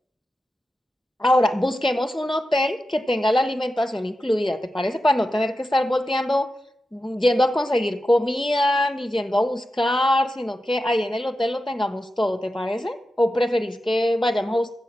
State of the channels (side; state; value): both; normal; correlation 0.91